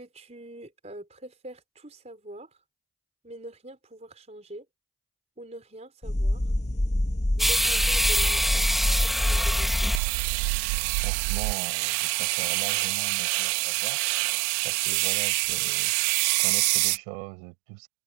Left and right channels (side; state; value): left; drops out; at 10.0 s